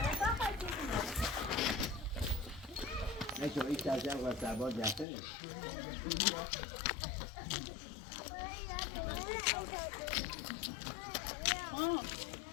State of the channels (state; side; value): drops out; right; at 5.1 s